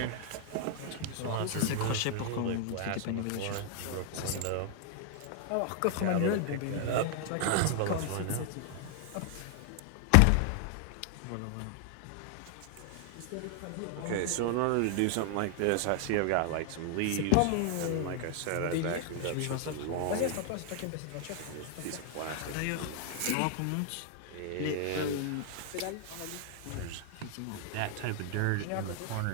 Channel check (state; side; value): different; both; correlation 0.00